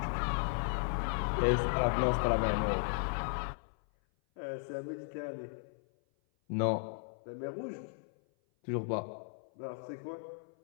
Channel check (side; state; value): right; silent; 54 dB below the other